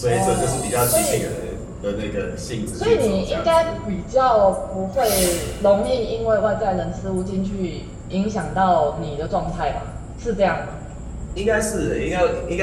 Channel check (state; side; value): identical; both; correlation 1.00